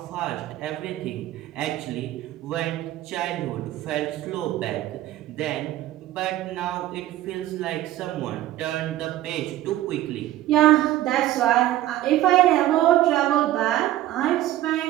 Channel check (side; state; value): left; quieter; 14.2 dB